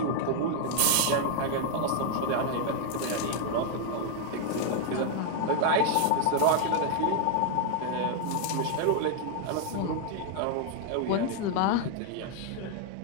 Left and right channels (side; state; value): both; different; correlation 0.00